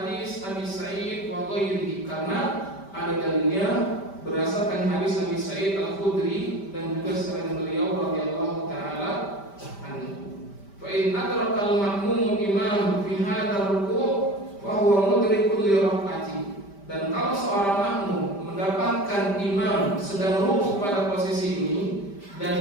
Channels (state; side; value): late; right; 5.1 ms